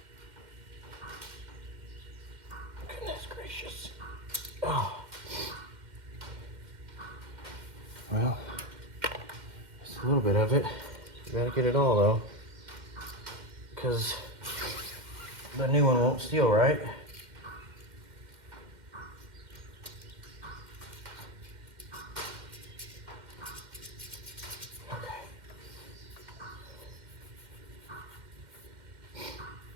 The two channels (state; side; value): late; left; 2.1 ms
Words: Goodness gracious. Oh. Well, it's a little bit of it. You gotta get it all though, because the new one won't steal, right? Okay.